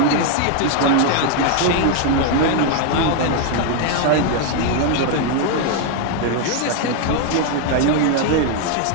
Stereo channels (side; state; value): both; different; correlation 0.01